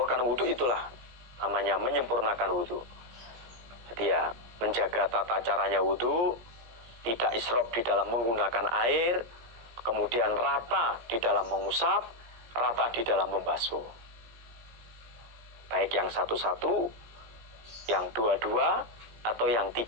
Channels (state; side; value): late; left; 17 ms